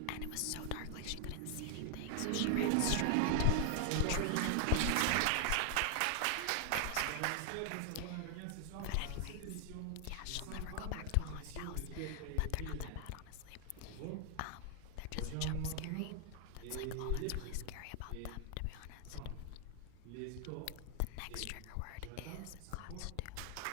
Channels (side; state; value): both; different; correlation 0.00